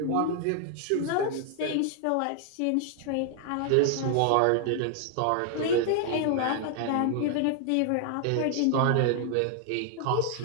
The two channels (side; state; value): both; different; correlation 0.00